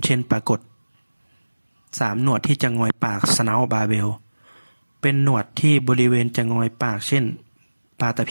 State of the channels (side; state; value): both; inverted; correlation -1.00